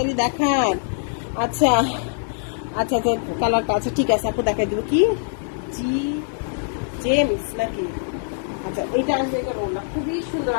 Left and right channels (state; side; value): silent; right; digital silence